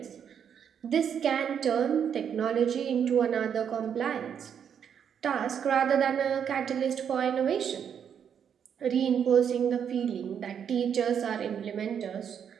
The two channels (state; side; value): quieter; left; 8.0 dB